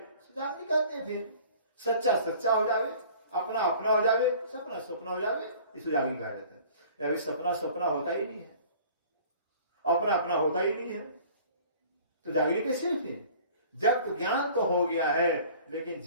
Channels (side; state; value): both; inverted; correlation -0.49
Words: जागनी कहते हैं। फिर सच्चा सच्चा हो जावे, अपना अपना हो जावे, सपना सपना हो जावे, इसको जागनी कहा जाता है। अभी सपना सपना होता ही नहीं है, अपना अपना होता ही नहीं है, तो जागनी कैसे फिर? जब तो ज्ञान तो हो गया है, लेकिन